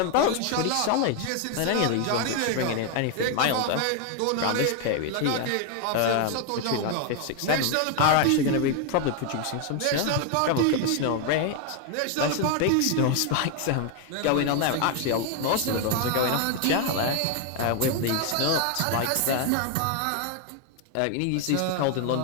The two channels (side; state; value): both; different; correlation 0.01